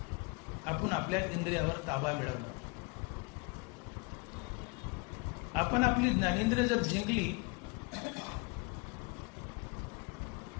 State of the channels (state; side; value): quieter; right; 28.7 dB